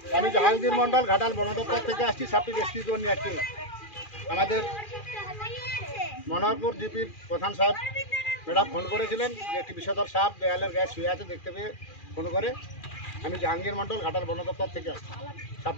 আমি জাহাঙ্গীর মন্ডল, ঘাটাল বন দপ্তর থেকে আসছি। সাপটি রেস্কিউ করে নিয়ে আসছি। আমাদের মনোহরপুর জিপির প্রধান সাহেব ম্যাডাম ফোন করেছিলেন যে একটি বিষধর সাপ দেয়ালের গায়ে শুয়ে আছে, দেখতে পেয়ে ফোন করে আমি জাহাঙ্গীর মন্ডল, ঘাটাল বন দপ্তর থেকে আসছি।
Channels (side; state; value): right; late; 2.4 ms